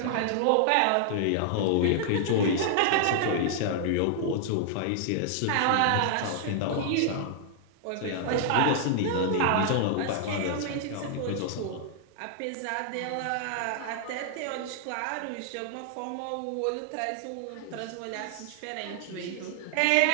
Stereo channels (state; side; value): different; both; correlation -0.01